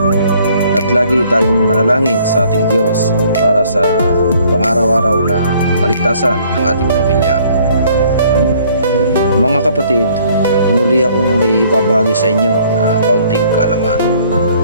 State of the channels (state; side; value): inverted; both; correlation -0.60